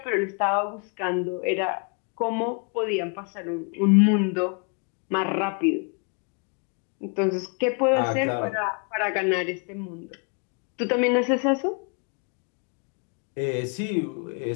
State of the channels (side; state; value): right; quieter; 37.7 dB